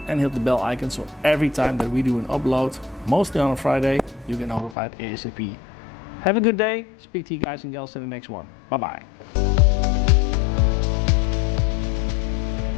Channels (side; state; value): right; drops out; at 4.8 s